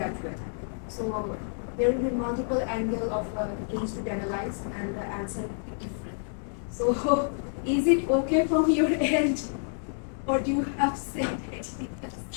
way. So there will be multiple angles of a case to analyze and the answer will be different. So is it okay from your end or do you have said ideas?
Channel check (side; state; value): right; silent; digital silence